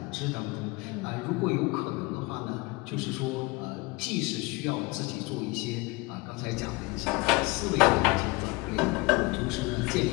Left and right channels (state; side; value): quieter; right; 24.7 dB